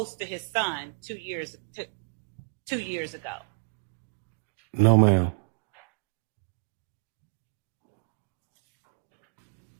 to his son 2 years ago? No, ma'am.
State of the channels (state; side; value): quieter; left; 32.3 dB